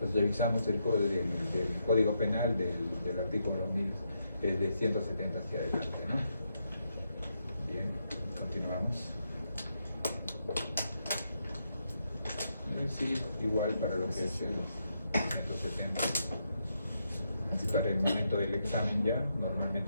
revisamos el del Código Penal del artículo 1000, de 170 hacia adelante, ¿no? Bien, continuamos. Sí, igual para lo que es el 170. Así para el momento del examen ya,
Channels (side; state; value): both; inverted; correlation -0.81